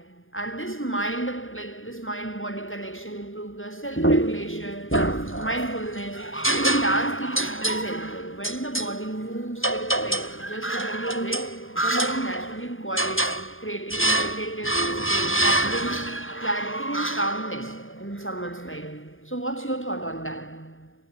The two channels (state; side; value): late; right; 0.59 ms